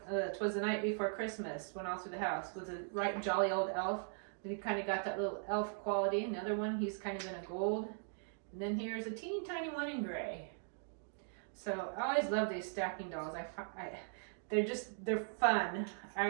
the Night Before Christmas" went all through the house. Was a right jolly old elf. He kind of got that little elf quality. Another one, he's kind of in a gold. And then here's a teeny tiny one in gray. So I always love these stacking dolls. They're fun.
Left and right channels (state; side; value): silent; left; digital silence